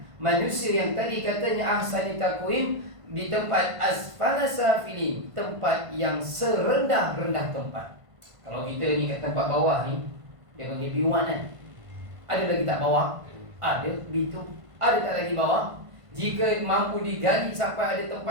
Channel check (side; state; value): left; late; 1.5 ms